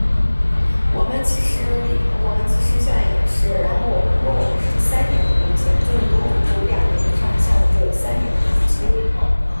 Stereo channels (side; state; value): both; inverted; correlation -1.00